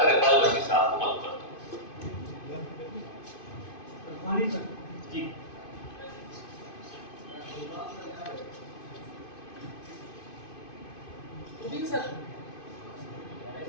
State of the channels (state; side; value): late; right; 2.5 ms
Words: इकबाल बर्की साहब को मदऊ करता हूँ। जी सर